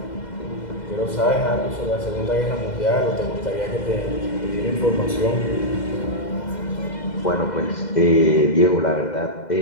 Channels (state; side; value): late; right; 2.0 ms